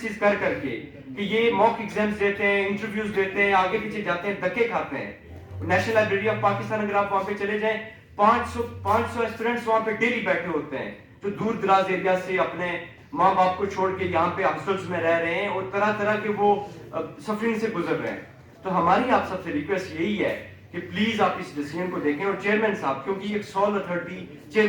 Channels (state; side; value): identical; both; correlation 1.00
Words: کر کے کہ یہ موک ایگزامز دیتے ہیں, انٹرویوز دیتے ہیں, آگے پیچھے جاتے ہیں, دھکے کھاتے ہیں. نیشنل لائبریری آف پاکستان اگر آپ وہاں پہ چلے جائیں 500 اسٹوڈنٹس وہاں پہ ڈیلی بیٹھے ہوتے ہیں جو دور دراز ایریا سے اپنے ماں باپ کو چھوڑ کے یہاں پہ ہاسٹلز میں رہ رہے ہیں اور طرح طرح کے وہ سفرنگ سے گزر رہے ہیں. تو ہماری آپ سب سے ریکویسٹ یہی ہے کہ پلیز آپ اس ڈیسیژن کو دیکھیں, اور چیئرمین صاحب, کیونکہ ایک سول اتھارٹی